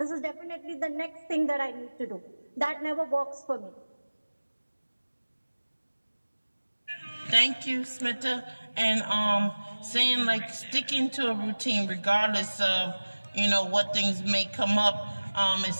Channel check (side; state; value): both; inverted; correlation -1.00